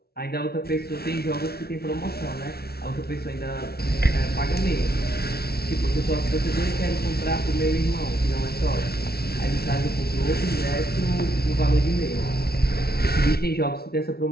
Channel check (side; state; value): right; late; 0.45 ms